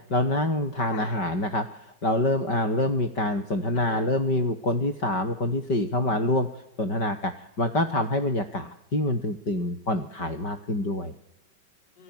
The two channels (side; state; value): right; late; 5.2 ms